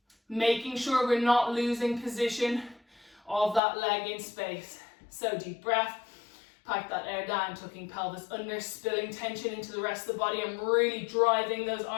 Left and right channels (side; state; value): right; drops out; at 3.6 s